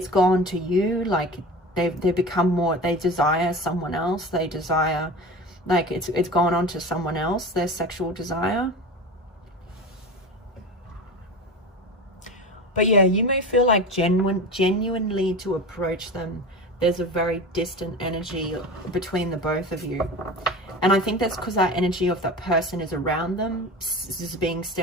gone to you, like they've become more, they desire someone else, they desire, like it's gone on to someone else, their sexual desire. But yeah, you may feel like genuinely to approach them, there's a very distant energy between the both of you. And I think that's because that energy of that person is around them, is being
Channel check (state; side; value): normal; both; correlation 0.31